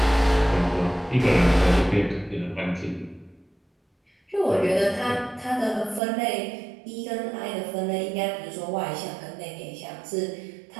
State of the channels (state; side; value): drops out; left; at 6.0 s